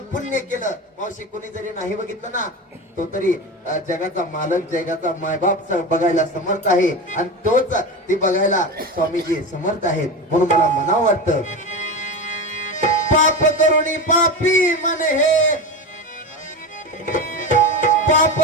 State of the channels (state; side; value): normal; both; correlation 0.23